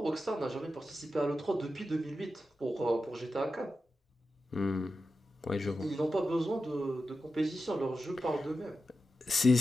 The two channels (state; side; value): normal; both; correlation 0.91